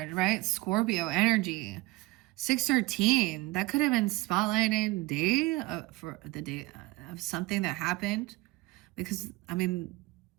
right? Scorpio energy, 613. That could have been spotlighted for the day. of something that happened. Because, I mean,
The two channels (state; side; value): quieter; left; 20.9 dB